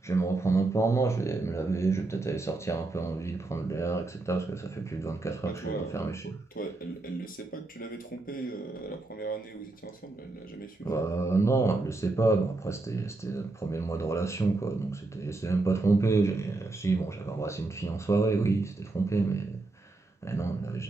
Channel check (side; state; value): left; quieter; 3.2 dB